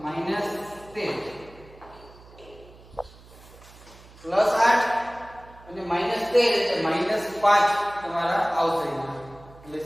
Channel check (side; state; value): right; noise; hum, 22 dB below the sound